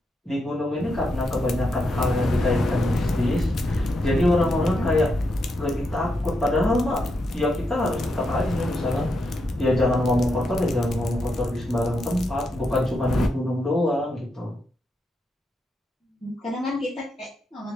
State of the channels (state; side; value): normal; both; correlation 0.82